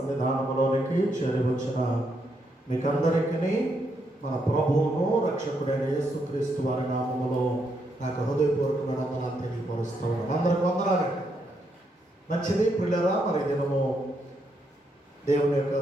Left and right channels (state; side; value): normal; both; correlation 0.78